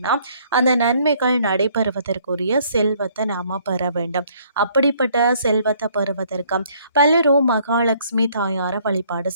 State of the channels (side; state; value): both; inverted; correlation -0.63